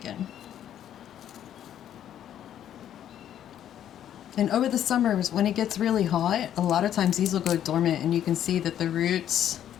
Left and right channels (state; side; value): quieter; right; 10.6 dB